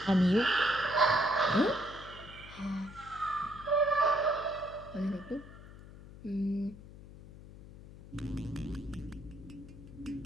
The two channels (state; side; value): noise; left; hum, 17 dB below the sound